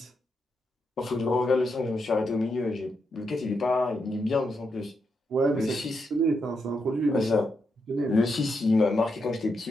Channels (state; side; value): normal; both; correlation 0.82